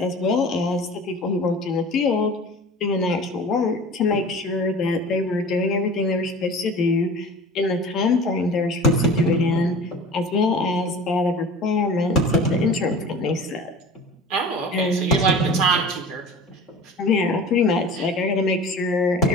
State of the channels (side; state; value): both; normal; correlation 0.39